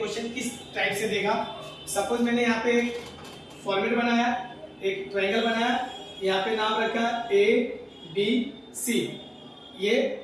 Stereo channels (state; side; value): identical; both; correlation 1.00